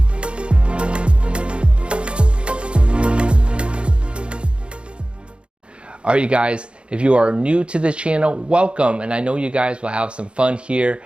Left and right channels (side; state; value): left; late; 0.057 ms